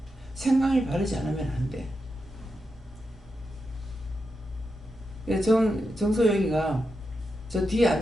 생각이 바르지 않으면 안 돼. 정소영이가 저 뒤에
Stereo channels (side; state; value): both; normal; correlation 0.87